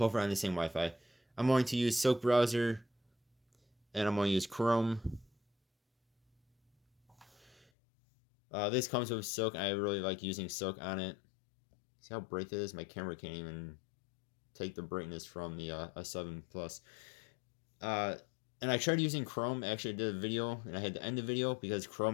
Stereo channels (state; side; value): drops out; right; at 7.7 s